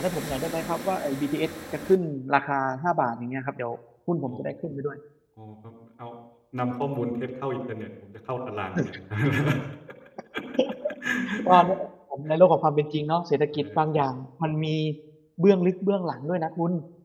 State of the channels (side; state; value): both; identical; correlation 1.00